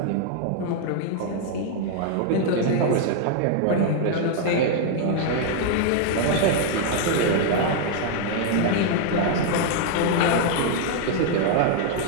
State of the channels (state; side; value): different; both; correlation 0.00